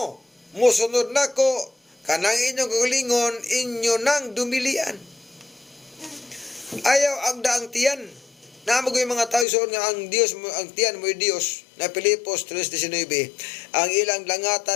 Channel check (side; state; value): right; drops out; at 9.5 s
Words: mosunod nako, kanang inyong kaugalingon, inyo nang dumilian. Ayaw agda ang tiyan. Namo yung mga tao soon nga ang Dios mo, ang tiyan mo Dios na Pilipos 3:19, ang ilang